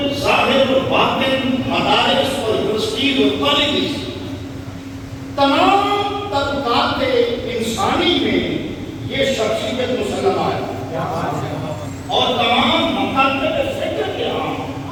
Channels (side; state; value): both; identical; correlation 1.00